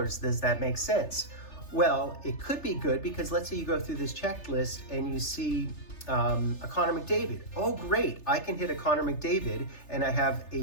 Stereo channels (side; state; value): right; late; 3.3 ms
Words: does that make sense? Well, it could be good, because let's say you go through this checklist and you see a Connor McDavid. Oh, great! I can hit a Connor McDavid, and